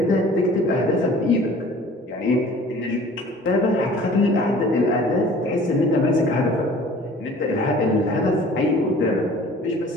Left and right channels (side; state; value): both; normal; correlation 0.48